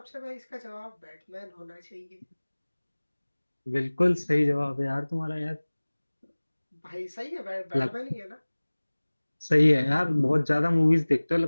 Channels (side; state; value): both; inverted; correlation -1.00